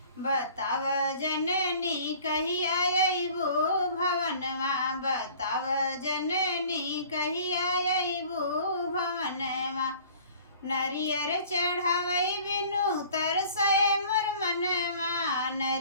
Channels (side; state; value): both; inverted; correlation -0.49